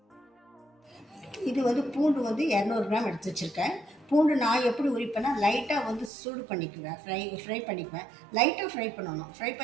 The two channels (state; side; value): drops out; left; at 6.1 s